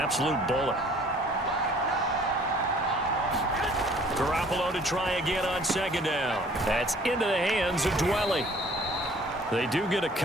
bullet. Garoppolo to try again on second down. That's into the hands of Dwelly. They do get a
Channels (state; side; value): normal; both; correlation 0.55